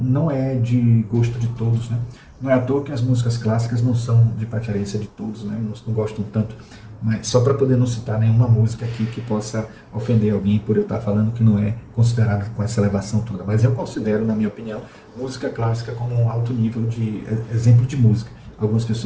não é de gosto de todos, né? Não é à toa que as músicas clássicas não são de preferência de todos, né? Não gostam tanto. Mas só para poder não citar nenhuma música aqui que possa ofender alguém por eu estar falando que não é considerado com essa elevação toda. Mas eu considero, na minha opinião, música clássica como um alto nível de exemplo de música. Algumas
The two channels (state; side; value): identical; both; correlation 1.00